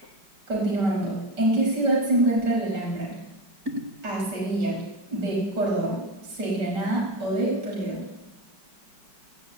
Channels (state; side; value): late; left; 5.1 ms